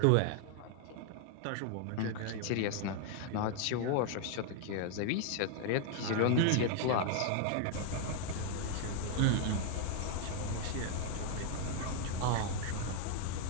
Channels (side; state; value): both; different; correlation 0.00